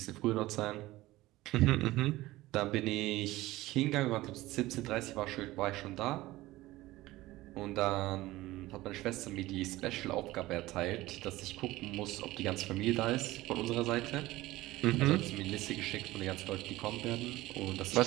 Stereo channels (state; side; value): quieter; left; 17.9 dB